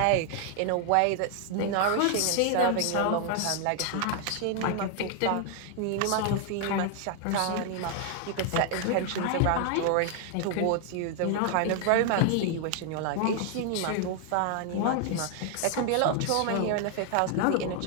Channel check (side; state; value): both; different; correlation 0.00